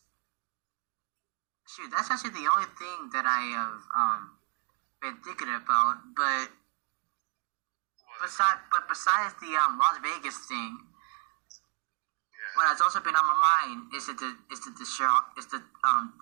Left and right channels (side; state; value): left; quieter; 39.0 dB